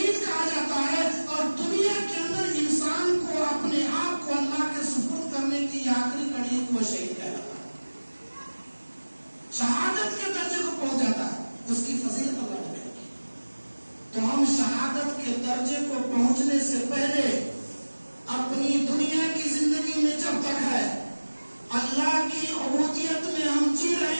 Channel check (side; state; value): both; inverted; correlation -1.00